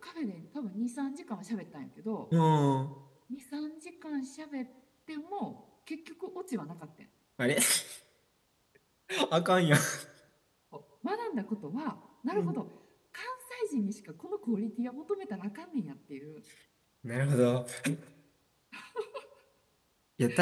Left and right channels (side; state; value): both; identical; correlation 1.00